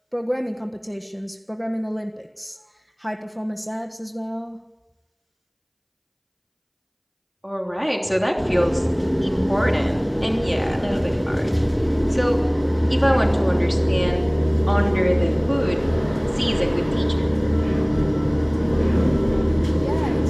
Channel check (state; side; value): identical; both; correlation 1.00